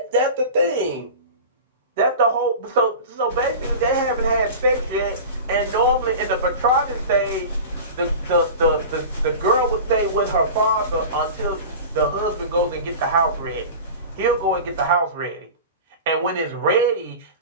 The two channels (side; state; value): both; inverted; correlation -0.33